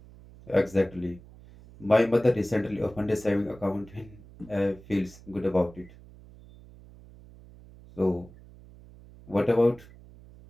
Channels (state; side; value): noise; right; hum, 21 dB below the sound